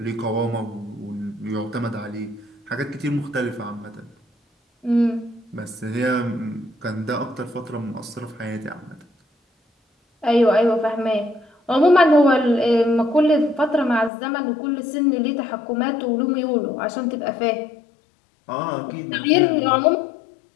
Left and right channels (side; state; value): right; drops out; at 14.1 s